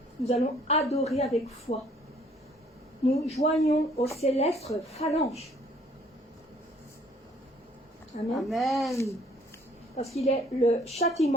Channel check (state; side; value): normal; both; correlation 0.60